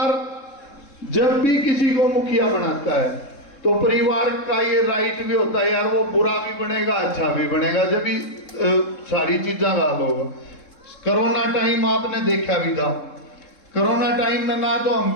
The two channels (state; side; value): late; right; 3.7 ms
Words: जब भी किसी को मुखिया बनाता है तो परिवार का ये राइट भी होता है यार, वो बुरा भी बनेगा अच्छा भी बनेगा, जब भी सारी चीज़ें गाल होगा। कोरोना टाइम आपने देखा भी था, कोरोना टाइम में ना तो हम